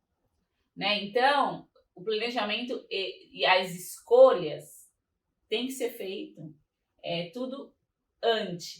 Né? Então, o planejamento e as escolhas tem que ser feito tudo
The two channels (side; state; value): both; identical; correlation 1.00